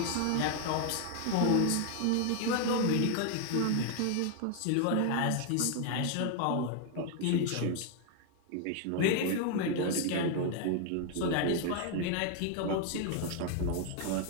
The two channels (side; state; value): both; different; correlation 0.00